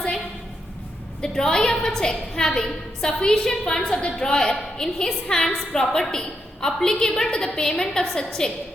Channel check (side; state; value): both; normal; correlation 0.82